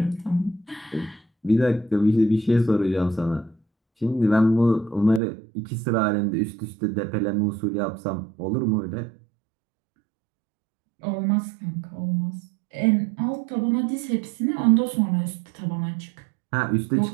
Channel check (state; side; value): drops out; left; at 5.2 s